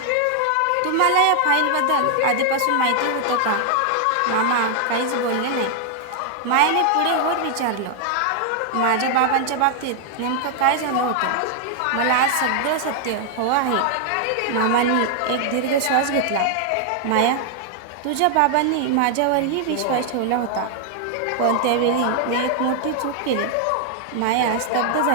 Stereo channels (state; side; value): different; both; correlation 0.00